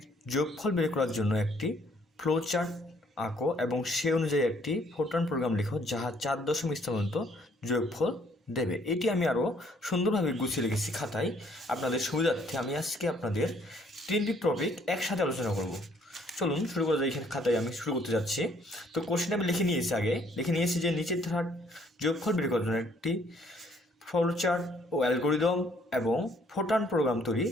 যোগফল বের করার জন্য একটি ফ্লোচার্ট আঁকো এবং সে অনুযায়ী একটি ফোরট্রান প্রোগ্রাম লিখো যাহা 4 দশমিক স্থান পর্যন্ত যোগফল দেবে। এটি আমি আরও সুন্দরভাবে গুছিয়ে রেখেছি খাতায়। আপনাদের সুবিধার্থে আমি আজকে আপনাদের 3টি টপিক একসাথে আলোচনা করব। চলুন শুরু করা যায়। এখানে খাতায় আমি শুরু করতে যাচ্ছি। তো কোশ্চেন আমি লিখে নিয়েছি যে নিচের ধারার যোগফল বের করার জন্য একটি ফ্লোচার্ট ও অ্যালগরিদম এবং ফোরট্রান প্রোগ্রাম তৈরি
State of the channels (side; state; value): both; normal; correlation 0.64